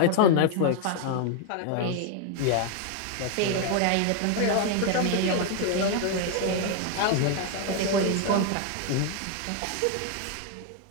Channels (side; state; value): both; different; correlation 0.00